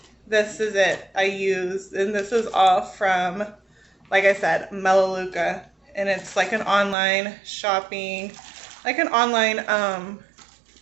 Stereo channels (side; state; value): left; drops out; at 7.0 s